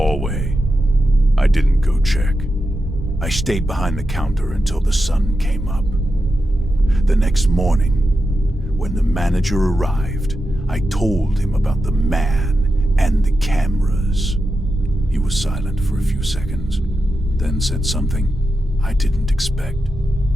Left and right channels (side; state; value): both; normal; correlation 0.89